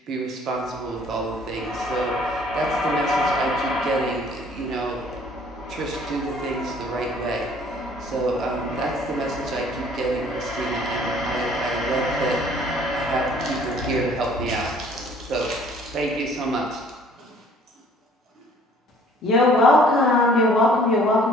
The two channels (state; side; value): normal; both; correlation 0.56